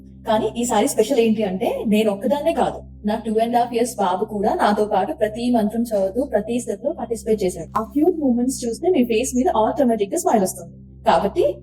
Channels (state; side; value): identical; both; correlation 1.00